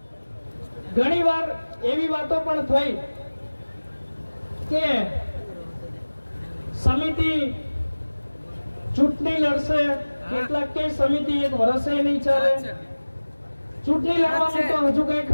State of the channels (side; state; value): both; inverted; correlation -1.00